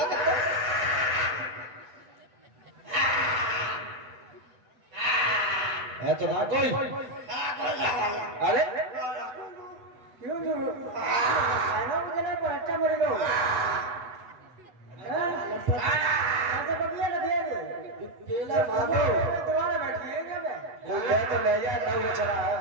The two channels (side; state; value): left; late; 8.0 ms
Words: करता है तो ना कोई अरे क्यों खाना मुझे नहीं पर अच्छा मेरे को ऐसे बगिया ना दिए केला मारो दोबारा बैठिए क्या मैं कोई ले तो ले जा ना वो चला